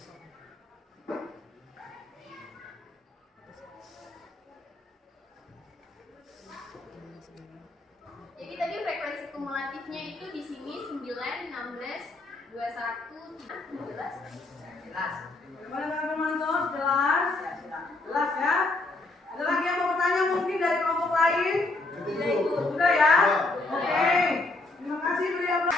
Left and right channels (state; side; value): quieter; right; 3.1 dB